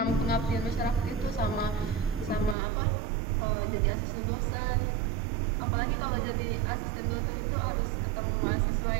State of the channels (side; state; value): left; drops out; at 2.6 s